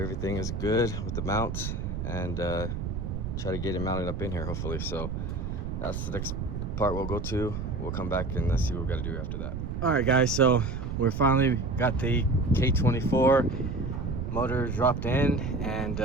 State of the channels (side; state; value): right; noise; rumble, 4 dB below the sound